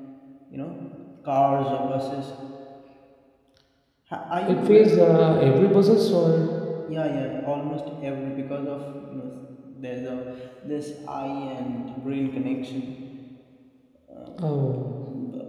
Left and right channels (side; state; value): both; identical; correlation 1.00